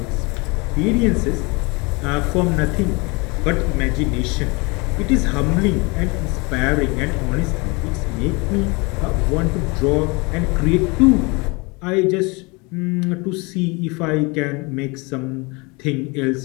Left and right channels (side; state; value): right; quieter; 27.7 dB